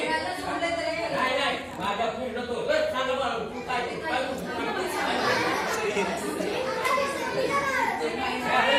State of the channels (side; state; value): both; identical; correlation 1.00